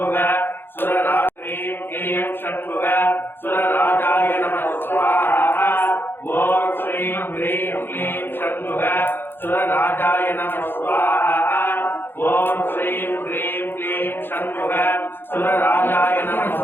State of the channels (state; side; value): late; right; 0.10 ms